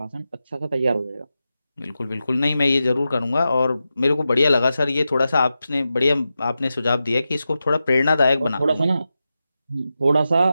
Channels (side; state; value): both; inverted; correlation -0.91